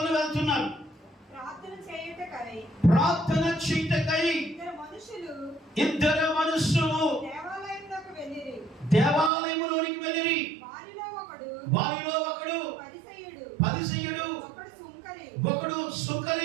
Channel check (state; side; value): drops out; left; at 9.3 s